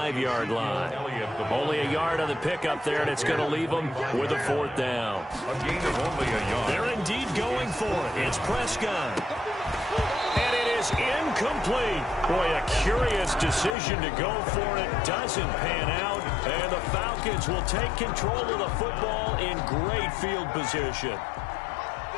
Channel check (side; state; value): right; drops out; at 13.8 s